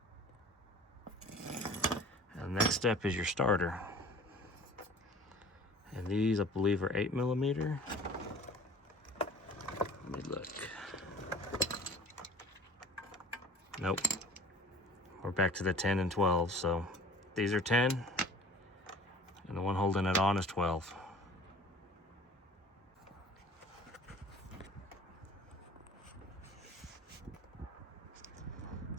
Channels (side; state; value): both; normal; correlation 0.46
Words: And the next step is your starter. And these, I believe, are 8mm. Let me look. Nope. We're back to the 10 and 12. So these are 10, and the one holding it on is 12.